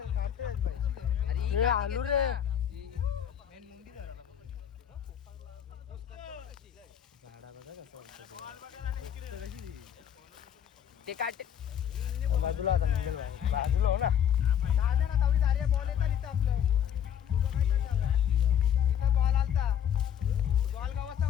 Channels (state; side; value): quieter; right; 9.3 dB